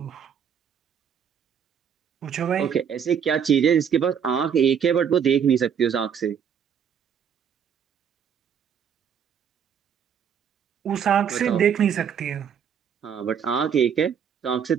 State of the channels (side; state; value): left; quieter; 7.8 dB